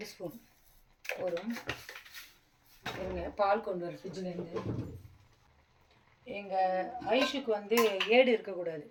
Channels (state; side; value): identical; both; correlation 1.00